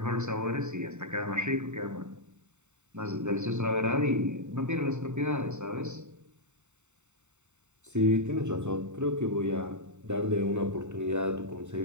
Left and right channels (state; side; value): late; left; 0.84 ms